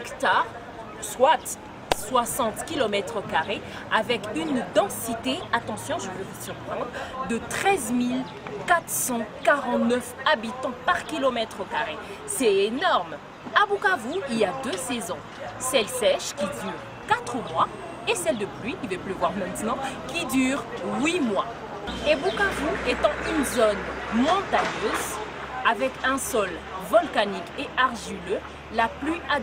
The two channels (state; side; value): identical; both; correlation 1.00